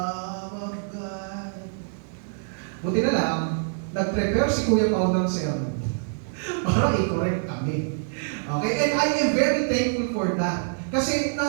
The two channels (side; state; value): left; silent; digital silence